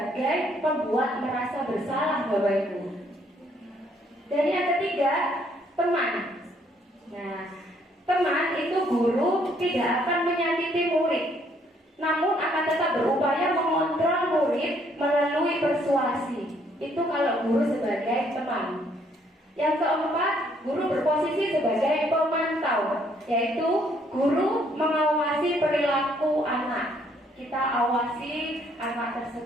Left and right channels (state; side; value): normal; both; correlation 0.67